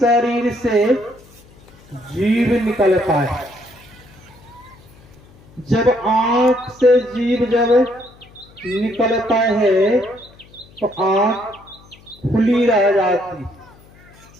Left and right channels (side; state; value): left; noise; hum, 25 dB below the sound